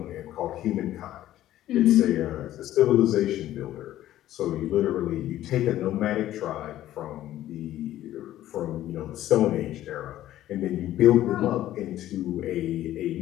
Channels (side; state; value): right; quieter; 13.5 dB